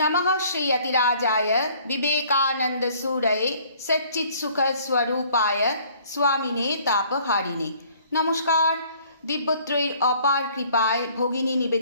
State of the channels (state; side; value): inverted; both; correlation -0.57